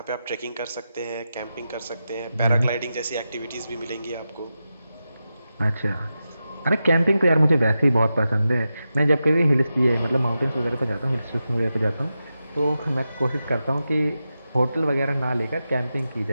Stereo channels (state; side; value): inverted; both; correlation -0.90